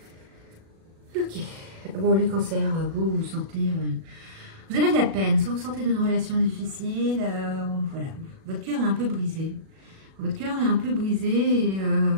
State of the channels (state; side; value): late; left; 37 ms